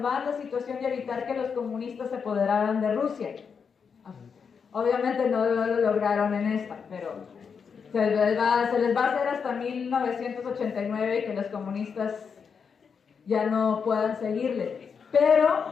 la situación y evitar que los comunistas se apoderaran de Rusia. Obviamente no lo lograron en esta, pero se les va a hacer hasta 1989 y que los comunistas ya no puedan seguirle.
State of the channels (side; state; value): right; quieter; 6.2 dB